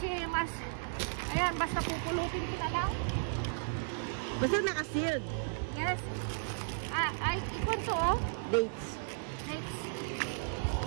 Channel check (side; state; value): left; silent; digital silence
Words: mas ayan, basta pupulutin ko na lang. Basta naka-sealed. Yes. Ay, ikon to oh. Dates. Next.